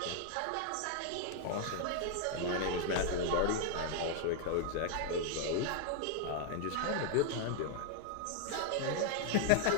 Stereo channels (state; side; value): different; both; correlation 0.00